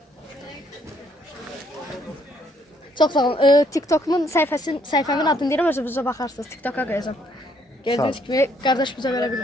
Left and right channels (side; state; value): both; normal; correlation 0.68